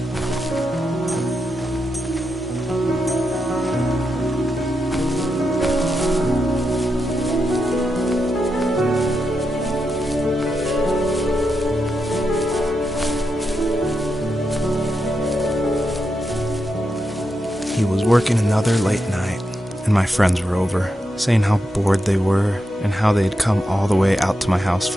He was working another late night, and my friends were over, saying how bored they were and how they had come all the way out to my house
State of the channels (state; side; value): normal; both; correlation 0.86